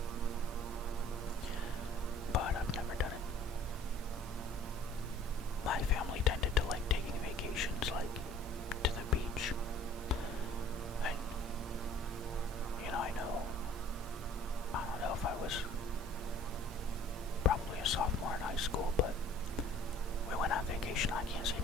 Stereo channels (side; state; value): both; normal; correlation 0.52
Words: But I've never done it. My family tended to like taking vacations like to the beach. And, you know, I don't know if I was probably a sophomore in high school, but we went on vacation. I can't see